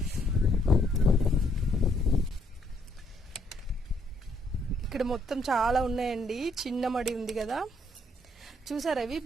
ఇక్కడ మొత్తం చాలా ఉన్నాయండి. చిన్న మడి ఉంది కదా, చూసారు. అవి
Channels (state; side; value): normal; both; correlation 0.70